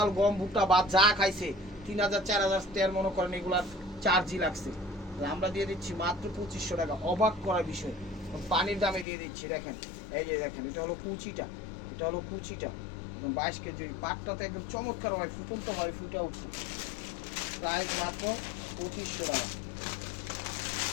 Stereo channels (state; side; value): drops out; right; at 9.1 s